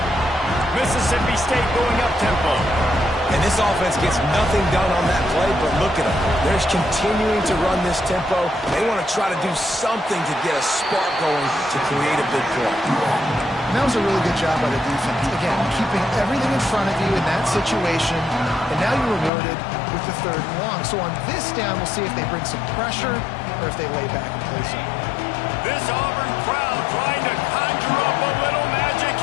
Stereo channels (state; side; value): drops out; right; at 19.3 s